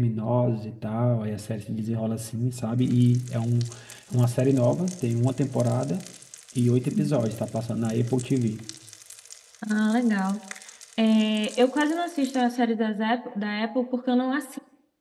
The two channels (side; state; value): both; identical; correlation 1.00